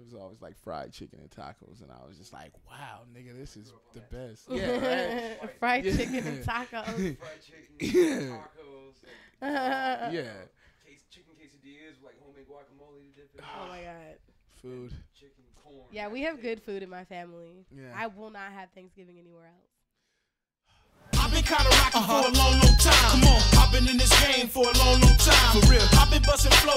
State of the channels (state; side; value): identical; both; correlation 1.00